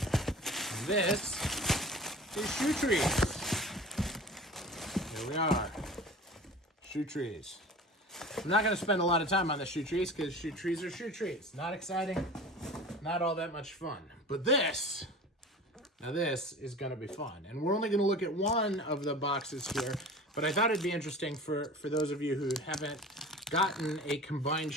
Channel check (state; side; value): normal; both; correlation 0.39